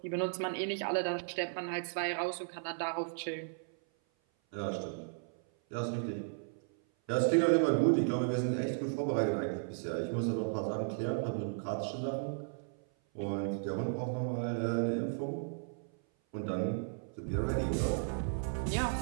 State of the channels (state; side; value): silent; left; 54 dB below the other